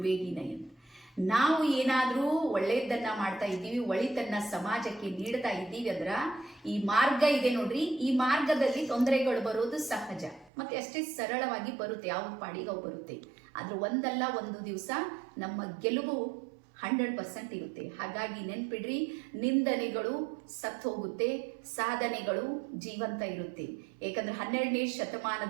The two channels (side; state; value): left; drops out; at 10.5 s